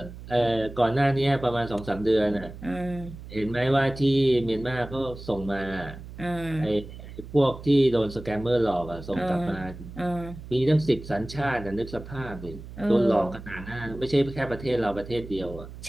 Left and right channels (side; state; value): right; noise; hum, 14 dB below the sound